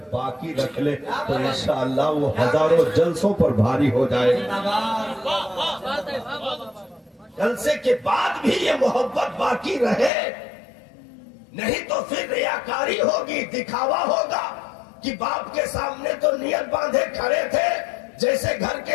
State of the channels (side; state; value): right; drops out; at 10.1 s